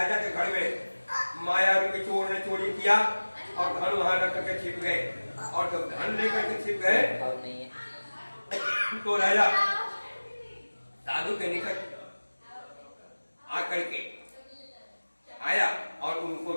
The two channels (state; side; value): inverted; both; correlation -1.00